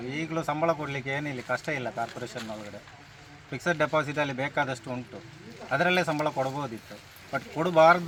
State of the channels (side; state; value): both; identical; correlation 1.00